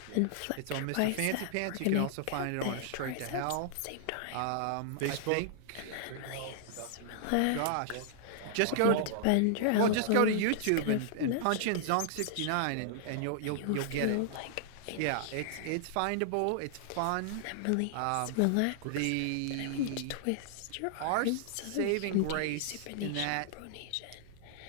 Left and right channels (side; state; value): both; different; correlation -0.01